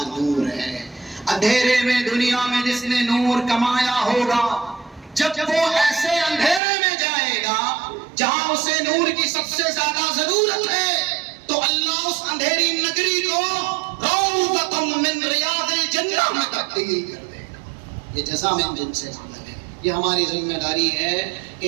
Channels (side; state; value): left; drops out; at 6.6 s